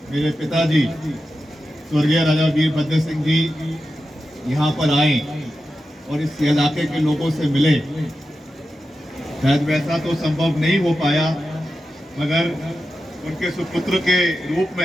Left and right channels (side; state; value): both; normal; correlation 0.91